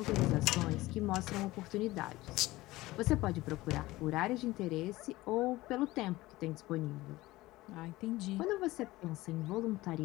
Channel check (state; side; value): quieter; right; 18.6 dB